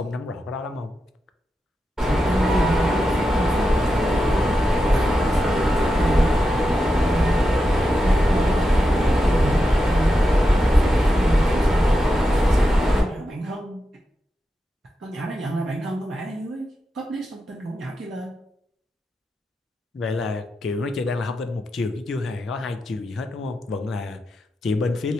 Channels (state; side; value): normal; both; correlation 0.89